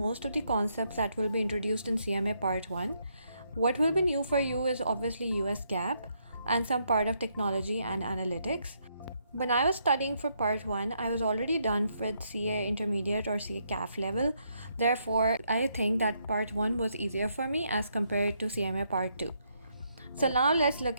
of the concepts that will be introduced in CMA Part 1. What will be new for you is obviously US GAAP and some part of technology and analytics. When I was studying for Part 1, I was already done with CA Intermediate or CA CAF level. Therefore, I think that Part 1 was easier for me as compared to CMA Part 2. So now let's look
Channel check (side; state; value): both; inverted; correlation -0.75